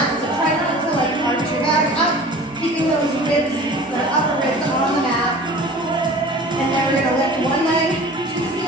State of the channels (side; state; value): both; normal; correlation 0.42